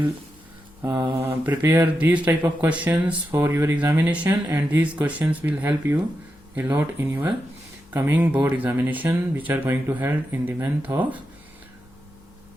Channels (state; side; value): noise; left; hum, 29 dB below the sound